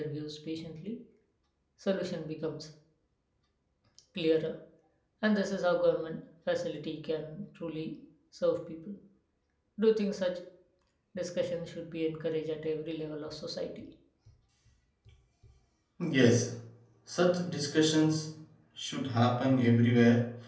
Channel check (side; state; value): both; identical; correlation 1.00